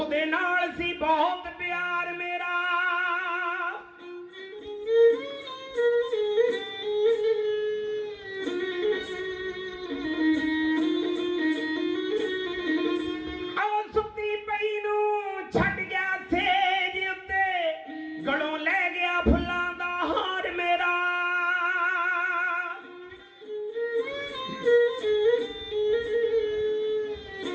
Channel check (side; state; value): both; identical; correlation 1.00